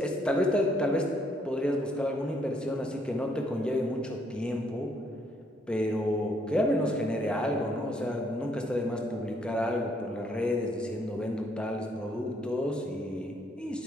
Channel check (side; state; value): both; normal; correlation 0.69